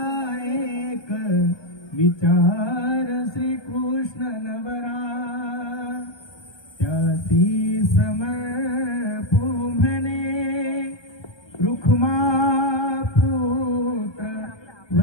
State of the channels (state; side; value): late; right; 1.2 ms